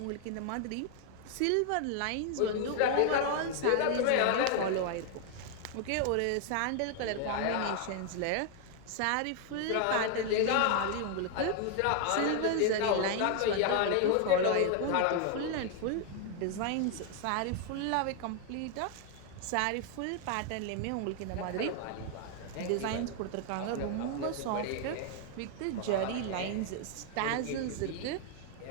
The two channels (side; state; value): both; different; correlation 0.00